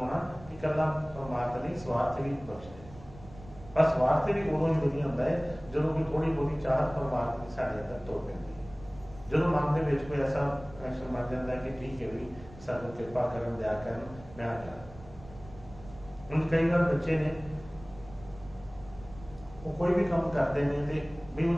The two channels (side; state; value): right; noise; rumble, 19 dB below the sound